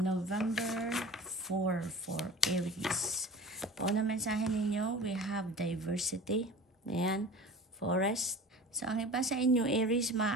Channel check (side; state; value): both; normal; correlation 0.39